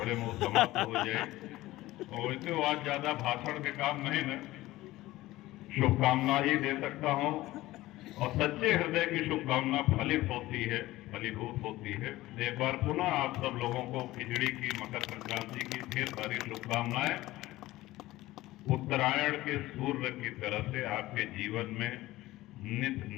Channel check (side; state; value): right; quieter; 17.4 dB